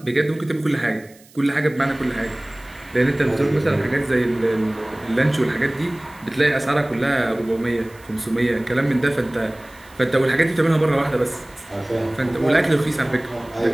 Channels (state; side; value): noise; right; hiss, 26 dB below the sound